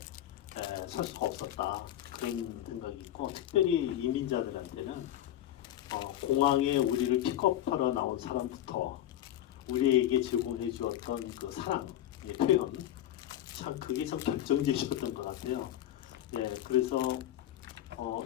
설 수가 없었다 그런 생각이 있고 특별히 이민자들한테는 공항에 우리를 픽업하러 나온 사람부터 우리에게 제공해 주었던 그 사랑의 표현 참 그게 참 결정적이었던 것 같아요. 네, 그래서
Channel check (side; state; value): right; quieter; 12.4 dB